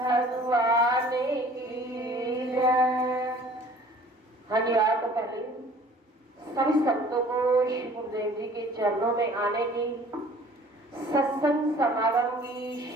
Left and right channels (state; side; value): normal; both; correlation 0.50